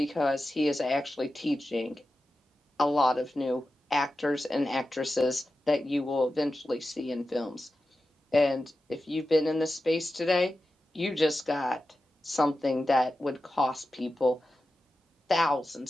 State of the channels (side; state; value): both; normal; correlation 0.92